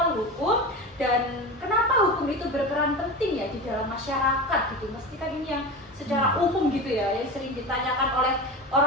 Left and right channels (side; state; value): both; normal; correlation 0.26